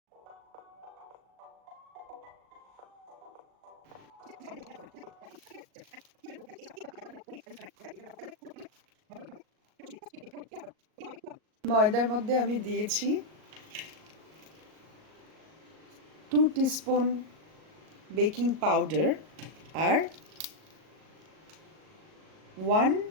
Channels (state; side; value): late; left; 38 ms